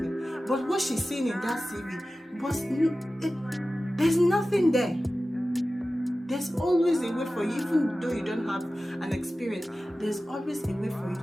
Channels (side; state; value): both; normal; correlation 0.95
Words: But what she's seeing in that CV was, there's nothing there. There's always a way for you, even though you don't have an experience, there's always a way for you